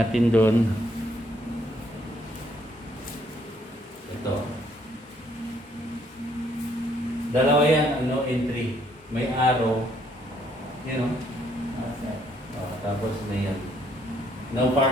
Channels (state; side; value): normal; both; correlation 0.68